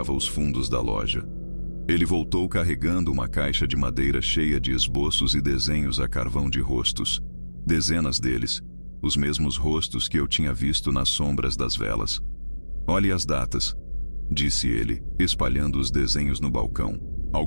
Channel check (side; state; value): both; inverted; correlation -1.00